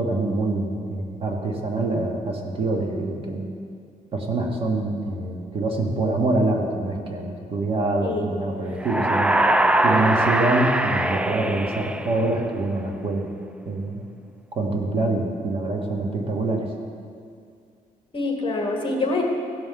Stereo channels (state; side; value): normal; both; correlation 0.70